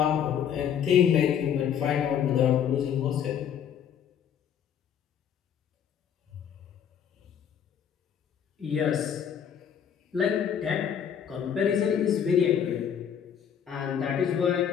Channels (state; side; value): quieter; right; 8.6 dB